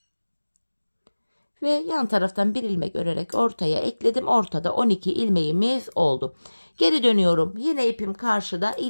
Ve yan taraftan bir ilmek örerek ortaya ekledim. Ortada 12 ilmeğimiz oldu. Geri dönüyorum. Yine ipim karşıda.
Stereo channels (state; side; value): inverted; both; correlation -1.00